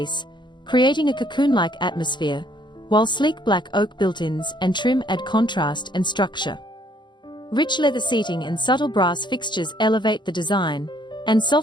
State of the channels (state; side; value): late; right; 0.22 ms